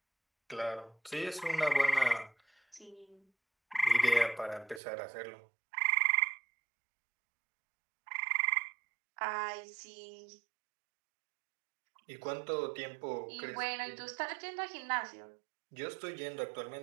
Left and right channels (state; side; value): drops out; left; at 4.8 s